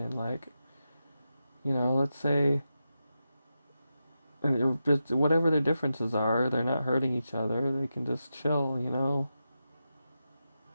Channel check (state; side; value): inverted; both; correlation -0.89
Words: like, let's say, and just whatever their differences are, they're not hurting each other. They can just chill.